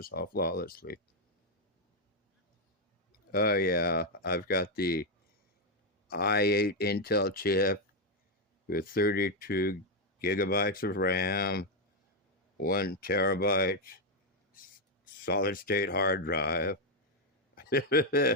off flawlessly. Oh, yeah. I've got the i8 Intel chip with 32 gigabytes of RAM, 1 terabyte solid state hard drive.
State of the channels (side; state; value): both; normal; correlation 0.02